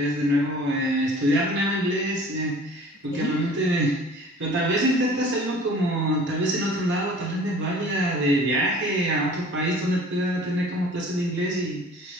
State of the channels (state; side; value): normal; both; correlation 0.47